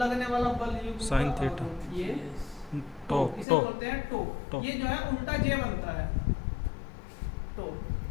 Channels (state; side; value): drops out; right; at 3.5 s